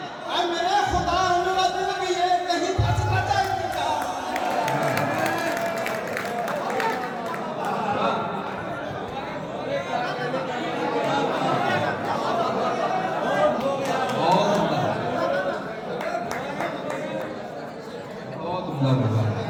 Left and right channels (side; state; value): both; identical; correlation 1.00